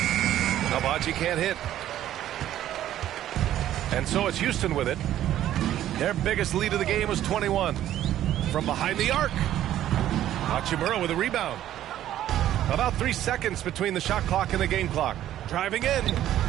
Nalbaji can't hit. And so it's Houston with it. Their biggest lead of the game was 21. From behind the arc. Hachimura with a rebound. About 3 seconds between the shot clock and the game clock. Driving in.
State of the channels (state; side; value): quieter; left; 12.3 dB